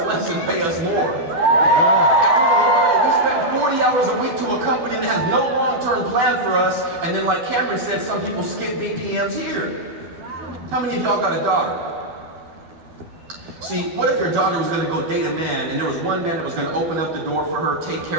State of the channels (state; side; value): late; left; 12 ms